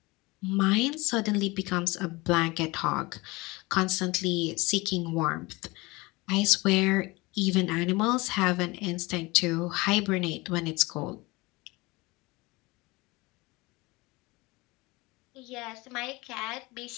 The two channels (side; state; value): right; quieter; 23.3 dB